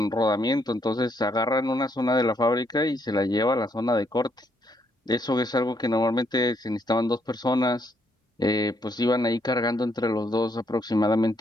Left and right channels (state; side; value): normal; both; correlation 0.73